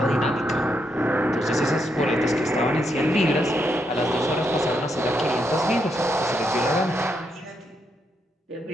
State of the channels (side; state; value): both; normal; correlation 0.79